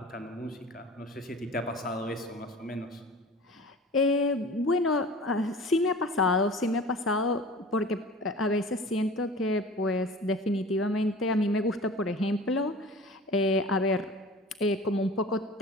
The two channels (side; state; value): both; normal; correlation 0.40